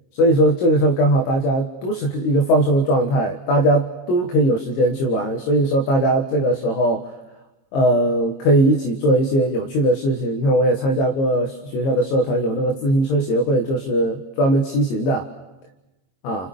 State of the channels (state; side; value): late; right; 22 ms